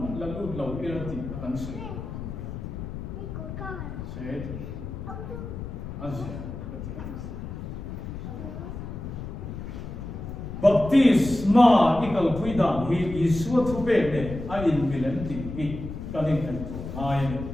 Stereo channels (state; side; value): noise; left; rumble, 8 dB below the sound